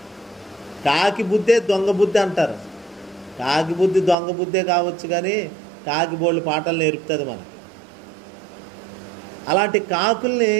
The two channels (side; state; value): left; drops out; at 4.2 s